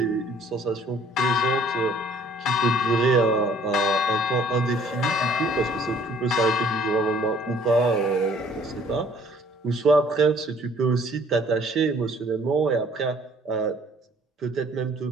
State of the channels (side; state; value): both; normal; correlation 0.58